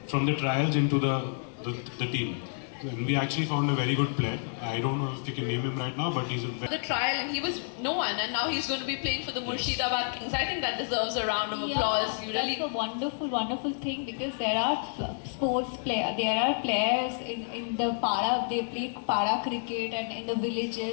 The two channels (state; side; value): silent; right; digital silence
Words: from the trials into the team. And we actually found a very good player. I don't know if you can name him right now, but he's a very the trial, and he was no one, and now he's going to be playing for the Murshidabad Kings. I think that deserves a round of applause. You really That's a wonderful, wonderful thing, because there are there are players in the para, they play para cricket and in the